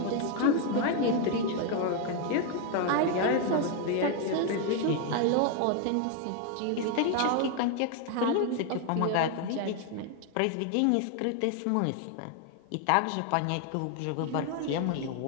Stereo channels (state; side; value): different; both; correlation 0.01